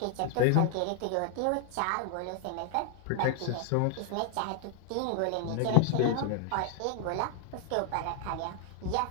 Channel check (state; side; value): different; both; correlation 0.00